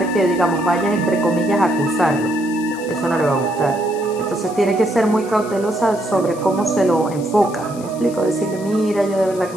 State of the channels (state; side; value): noise; left; hiss, 19 dB below the sound